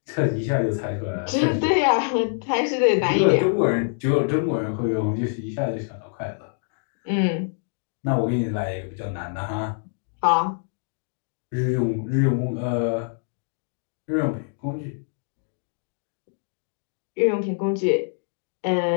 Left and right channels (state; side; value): silent; right; digital silence